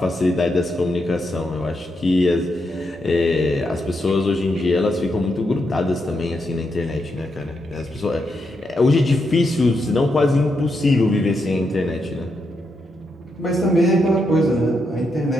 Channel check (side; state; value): both; normal; correlation 0.82